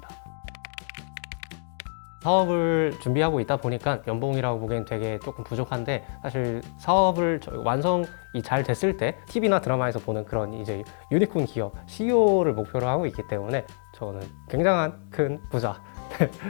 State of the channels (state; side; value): silent; right; digital silence